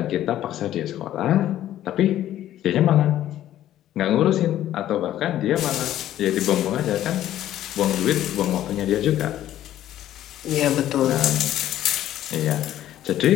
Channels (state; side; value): quieter; right; 12.6 dB